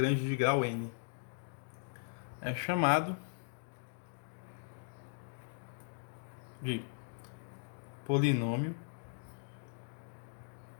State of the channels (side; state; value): right; silent; digital silence